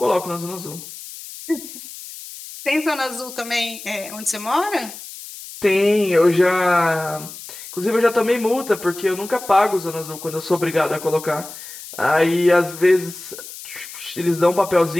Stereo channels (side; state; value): left; noise; hiss, 13 dB below the sound